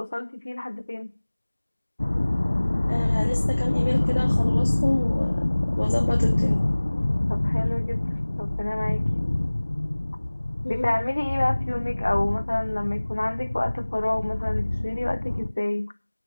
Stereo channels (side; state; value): both; inverted; correlation -1.00